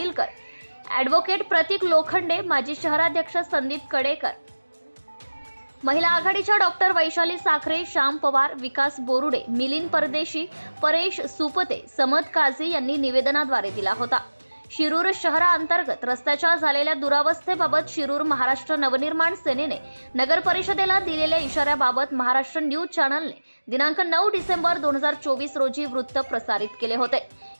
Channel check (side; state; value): both; inverted; correlation -1.00